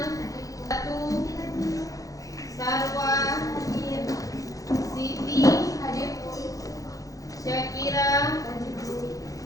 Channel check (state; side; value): late; right; 0.17 ms